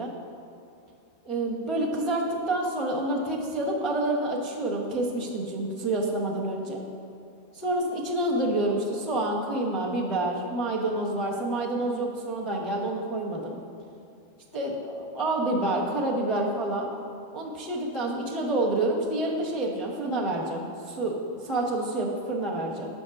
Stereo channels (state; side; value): late; right; 13 ms